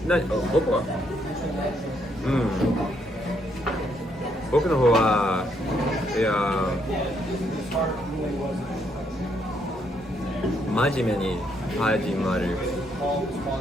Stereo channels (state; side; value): normal; both; correlation 0.73